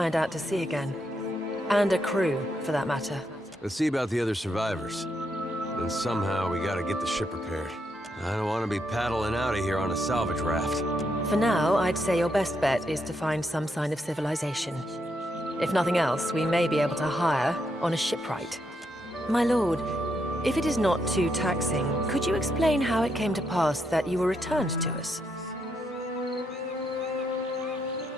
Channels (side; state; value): both; normal; correlation 0.79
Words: out to sea again. And a crew, for that matter. Let's see about the other survivors. Then somehow we gotta get the ship repaired. I don't want to be paddling out of here on a salvage raft. For now, I'd say your best bet is to find some sign of civilization. If nothing else, we may be able to hire on a shipwright. My lord, if it is not too taxing, could you explain how it came to pass that you were returned to us?